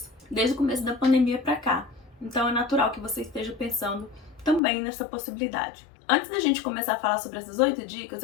desde o começo da pandemia para cá. Então é natural que você esteja pensando também nessa possibilidade. Antes da gente começar a falar sobre essas 8 dicas,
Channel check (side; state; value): right; drops out; at 4.6 s